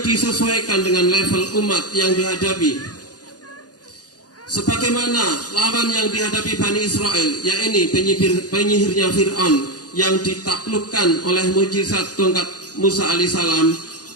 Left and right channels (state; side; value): late; right; 0.68 ms